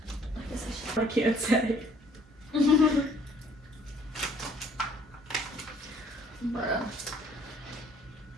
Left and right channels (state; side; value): normal; both; correlation 0.60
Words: I guess I I can't say. should.